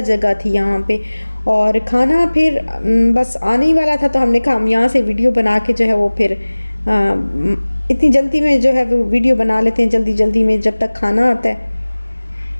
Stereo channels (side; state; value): both; inverted; correlation -1.00